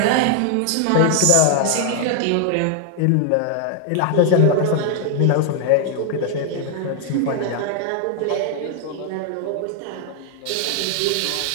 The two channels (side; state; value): both; different; correlation 0.00